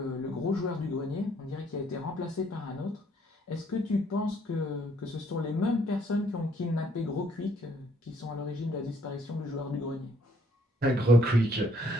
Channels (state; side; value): normal; both; correlation 0.65